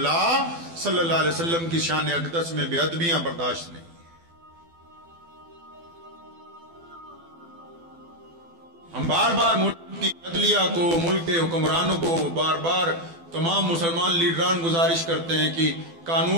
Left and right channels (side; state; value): left; late; 12 ms